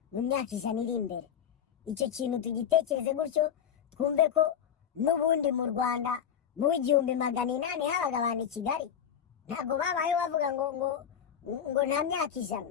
mu myaka 100 iri imbere. Icyo kintu tugitekereze gutyo, twumve ko n'ubundi mu Rwanda mu 1800 habaga abantu i Kigali, ntabwo babaye bavuga ngo nta myaka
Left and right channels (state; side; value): quieter; right; 8.6 dB